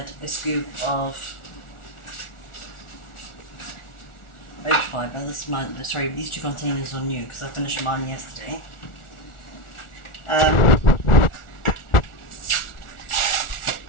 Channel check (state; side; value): late; right; 1.4 ms